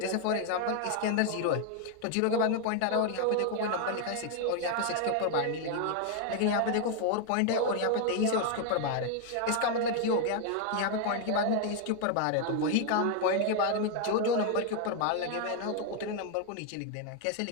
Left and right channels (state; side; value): different; both; correlation 0.00